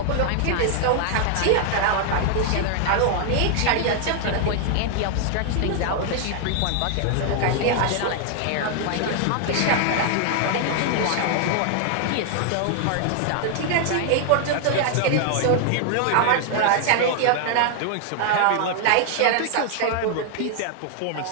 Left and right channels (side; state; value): both; different; correlation 0.00